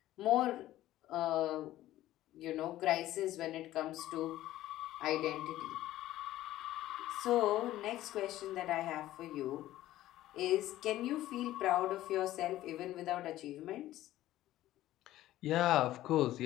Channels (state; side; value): quieter; right; 14.6 dB